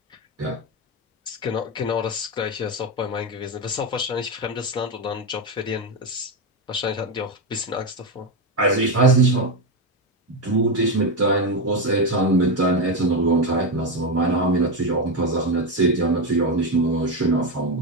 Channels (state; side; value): normal; both; correlation 0.11